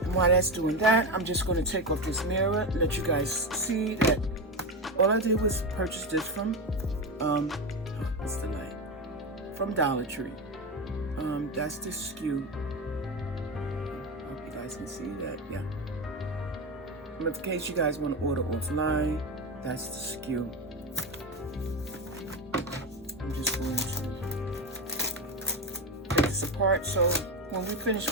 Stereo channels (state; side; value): normal; both; correlation 0.17